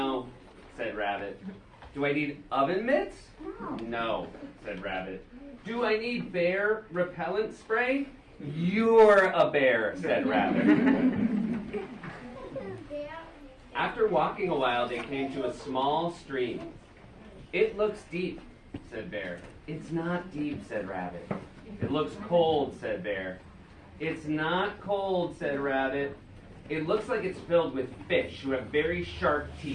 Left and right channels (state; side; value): identical; both; correlation 1.00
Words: said Rabbit. Do I need oven mitts? No, said Rabbit. Do I need bear repellent spray? You're a bear, said Rabbit. After walking a while, they came to a small stream. It looks deep, said Bear. It's not deep, said Rabbit. It looks cold, said Bear. It's not cold, said Rabbit. It looks like it's filled with fish who have very sharp